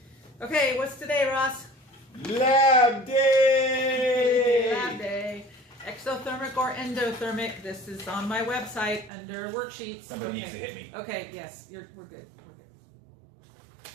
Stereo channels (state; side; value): drops out; left; at 9.1 s